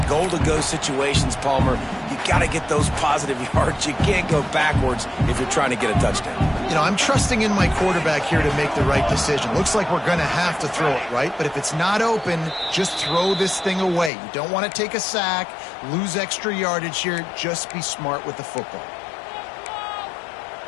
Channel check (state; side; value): drops out; right; at 14.1 s